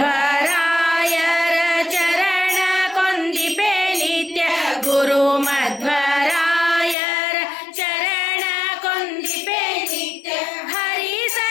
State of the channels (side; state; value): right; drops out; at 7.0 s